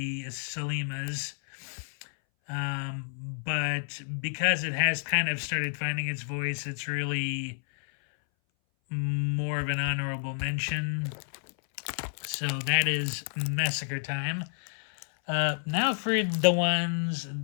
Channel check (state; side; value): silent; right; 58 dB below the other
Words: Sollimas. But because it has kind of started finding its voice, it's really more of an honorable mention. So that is Massacre Time. Now for the ones